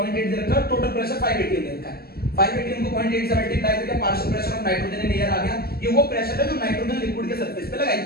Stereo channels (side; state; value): right; late; 0.45 ms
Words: दे रखा है, टोटल प्रेशर 5 atm दे रखा है। 5 atm को 0.8 से मल्टीप्लाई करके partial pressure of nitrogen in air आ गया। ये वो प्रेशर है जो नाइट्रोजन लिक्विड के सरफेस पे